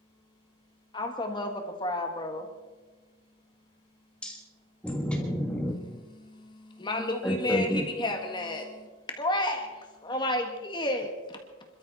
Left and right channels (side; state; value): both; normal; correlation 0.34